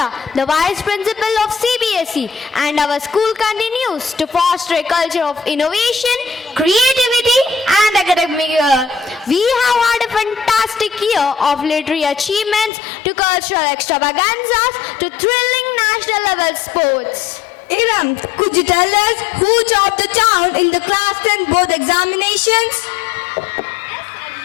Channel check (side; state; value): right; drops out; at 12.7 s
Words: the vice principal of CBSE, and our school continues to foster a culture of innovation, creativity, and academic year. We have had a fantastic year of literary achievements to cultural extravaganzas to thrilling national level sports. Iram, could you tell us who topped the town in the class 10 board examinations?